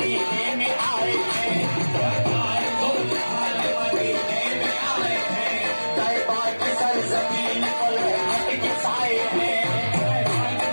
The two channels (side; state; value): both; inverted; correlation -1.00